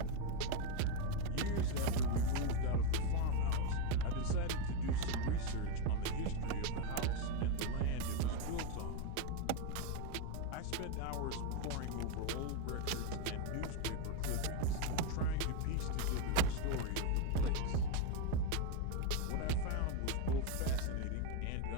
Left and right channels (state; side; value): different; both; correlation 0.03